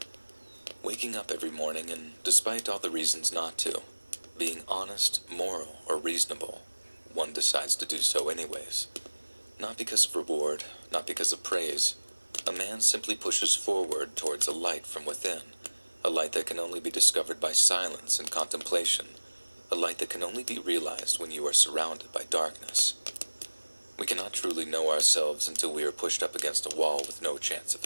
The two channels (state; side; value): inverted; both; correlation -1.00